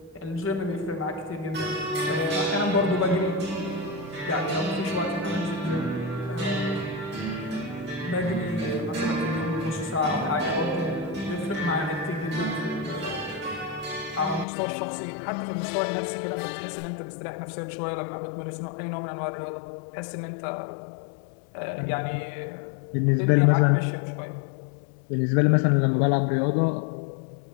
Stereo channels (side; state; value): right; drops out; at 14.5 s